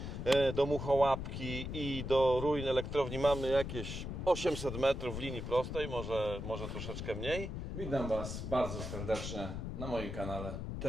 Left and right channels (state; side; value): noise; left; rumble, 5 dB below the sound